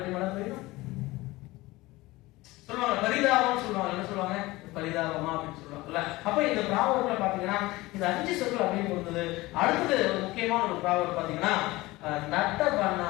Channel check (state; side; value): quieter; right; 20.0 dB